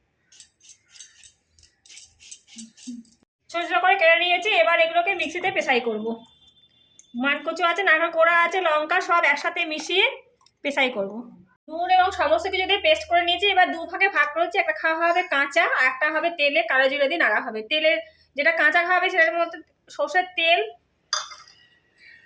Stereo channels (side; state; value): both; identical; correlation 1.00